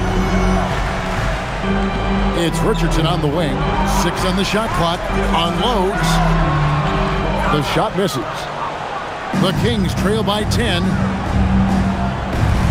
It's Richardson on the wing. 6 on the shot clock. Unloads. The shot misses. The Kings trail by 10.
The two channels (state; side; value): identical; both; correlation 1.00